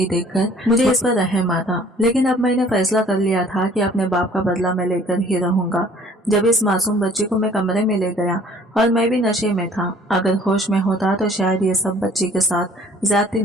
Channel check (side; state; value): both; normal; correlation 0.54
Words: देखकर मुझे इस पर रहम आता। लेकिन अब मैंने फैसला कर लिया था कि अपने बाप का बदला मैं लेकर ही रहूंगा। जब इस मासूम बच्ची को मैं कमरे में ले गया और मैं भी नशे में था, अगर होश में होता तो शायद ये सब बच्ची के साथ ज्यादती